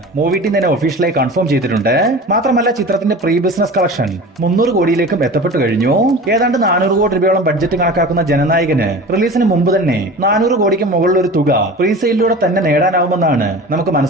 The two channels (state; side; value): normal; both; correlation 0.36